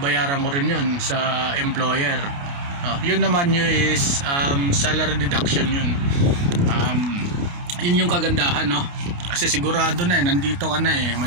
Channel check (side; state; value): left; late; 29 ms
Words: ko rin yun sa employer. Yun naman yun is salary deduction yun. Yun yung kagandahan, no? Kasi sigurado na nandito ka na